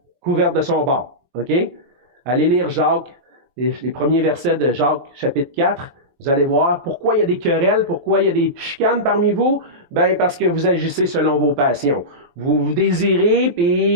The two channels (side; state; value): left; late; 23 ms